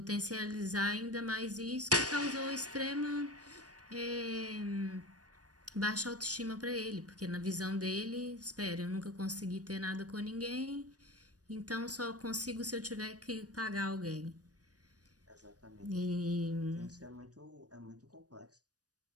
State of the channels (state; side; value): late; left; 0.68 ms